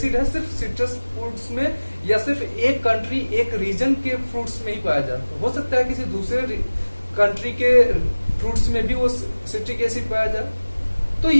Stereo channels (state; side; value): inverted; both; correlation -1.00